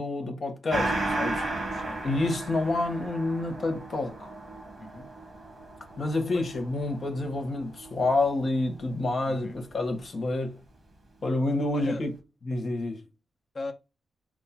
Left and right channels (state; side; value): normal; both; correlation 0.84